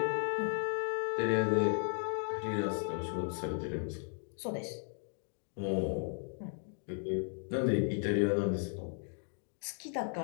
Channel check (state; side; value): silent; right; 54 dB below the other